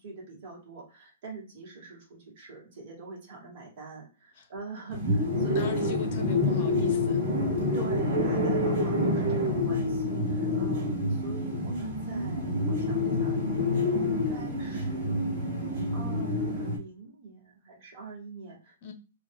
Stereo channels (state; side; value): inverted; both; correlation -0.32